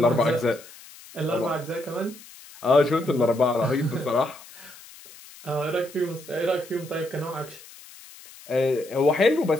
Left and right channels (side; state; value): left; noise; hiss, 20 dB below the sound